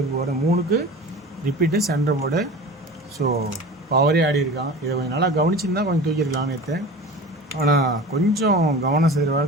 பவரு 3க்கு ரிப்பீட்டு சென்டர் போர்டு. ஸோ பவரே ஆடி இருக்கான். இதை கொஞ்சம் நல்லா கவனிச்சிருந்தா கொஞ்சம் தூக்கியிருக்கலாம் நேற்று. ஆனால் கொஞ்சம் கவனம்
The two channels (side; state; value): both; normal; correlation 0.36